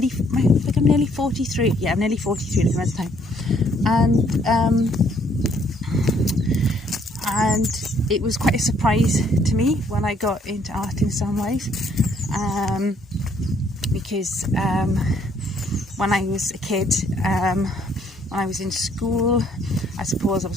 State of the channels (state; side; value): normal; both; correlation 0.66